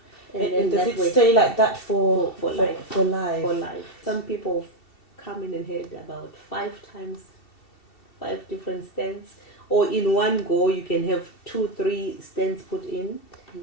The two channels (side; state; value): right; late; 2.7 ms